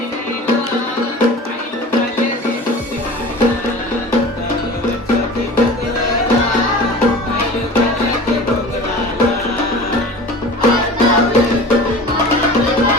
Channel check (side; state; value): both; normal; correlation 0.38